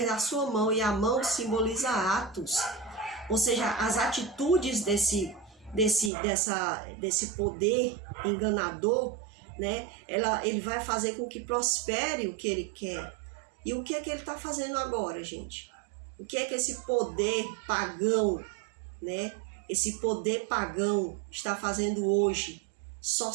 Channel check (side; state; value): left; drops out; at 6.1 s